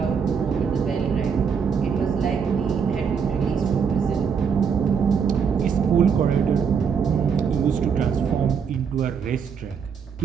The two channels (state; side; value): quieter; left; 6.6 dB